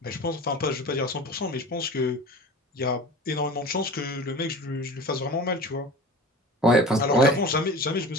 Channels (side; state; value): both; normal; correlation 0.36